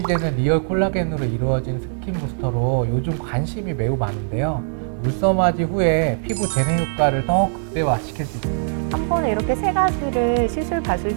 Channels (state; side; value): silent; left; digital silence